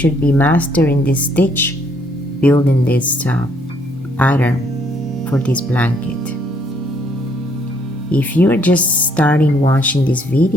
be mastering this stitch, building this pattern for this blanket. If you're just starting watching this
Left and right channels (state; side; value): normal; both; correlation 0.68